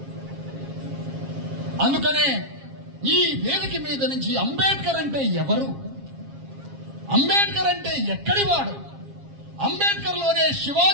అందుకనే ఈ వేదిక మీద నుంచి అంబేద్కర్ అంటే ఎవరు, అంబేద్కర్ అంటే ఎక్కడి వాడు, అంబేద్కర్ లోనే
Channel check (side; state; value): left; late; 7.4 ms